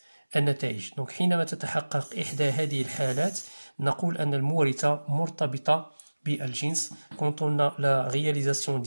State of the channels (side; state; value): both; inverted; correlation -1.00